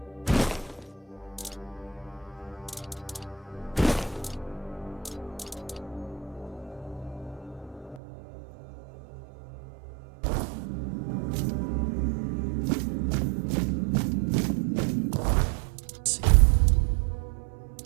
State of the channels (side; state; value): left; drops out; at 8.0 s